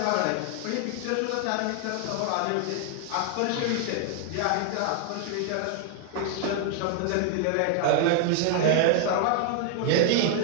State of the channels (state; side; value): different; both; correlation 0.00